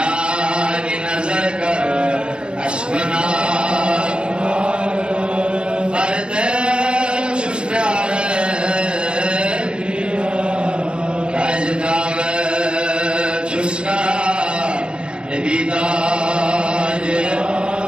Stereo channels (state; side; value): late; left; 0.054 ms